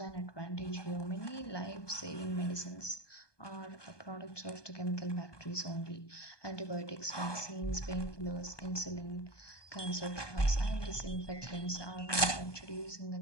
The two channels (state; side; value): late; right; 1.2 ms